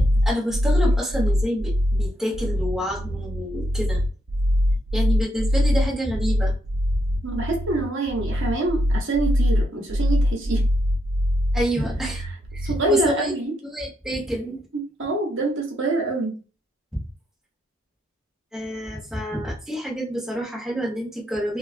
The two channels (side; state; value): both; normal; correlation 0.80